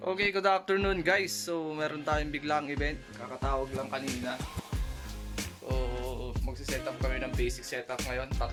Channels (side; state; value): both; identical; correlation 1.00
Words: good afternoon guys. So, meron tayong biglang event. Kakatawag lang kanina. So, magsiset up kami ng basic setup ngayon.